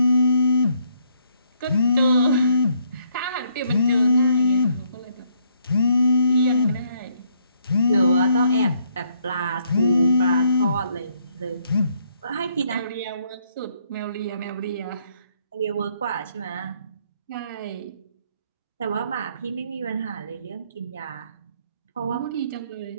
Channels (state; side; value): inverted; both; correlation -0.71